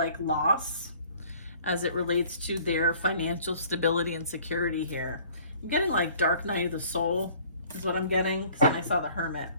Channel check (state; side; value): inverted; both; correlation -0.53